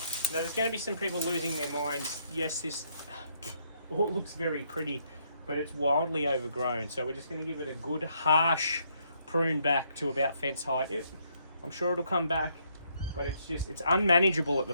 Now there's going to be some people losing their minds. Yes, this all looks very pretty, but it's wildly overgrown. So we're just going to give it a good harsh prune back to about fence height. I'm sure it'll come back, but it's unmanageable at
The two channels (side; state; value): both; inverted; correlation -0.72